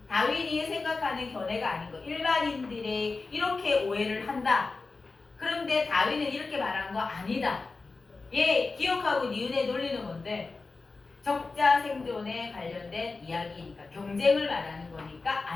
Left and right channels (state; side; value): quieter; right; 3.9 dB